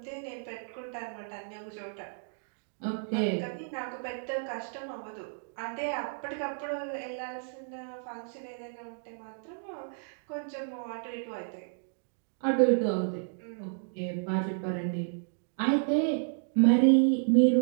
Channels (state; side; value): silent; left; digital silence